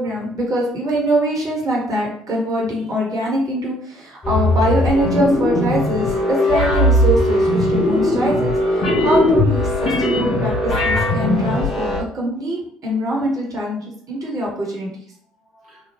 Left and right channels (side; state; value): both; normal; correlation 0.62